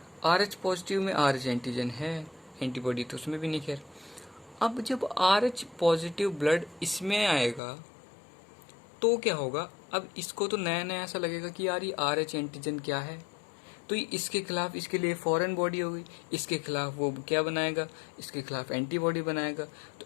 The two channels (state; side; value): drops out; right; at 7.6 s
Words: RH पॉजिटिव में RH एंटीजन है, एंटीबॉडी तो उसमें भी नहीं। खैर, अब जब RH पॉजिटिव ब्लड इसमें आएगा तो क्या होगा, अब इसको तो नया नया ऐसा लगेगा कि यार ये RH एंटीजन क्या है, तो इसके खिलाफ इसके लिए फॉरेन बॉडी हो गई, इसके खिलाफ वो क्या बनाएगा, इसके खिलाफ एंटीबॉडी बनाएगा। तो